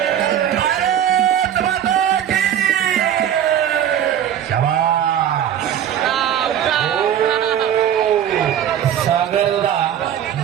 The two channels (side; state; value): left; quieter; 10.0 dB